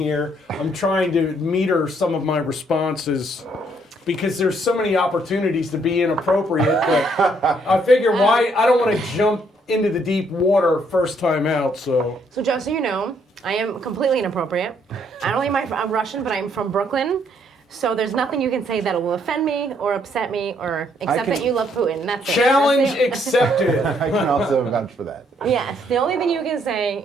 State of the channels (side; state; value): both; normal; correlation 0.69